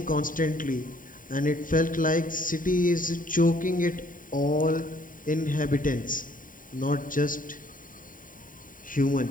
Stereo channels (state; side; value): late; right; 0.39 ms